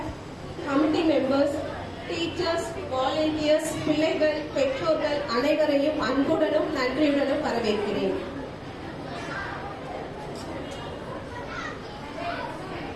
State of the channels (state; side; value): identical; both; correlation 1.00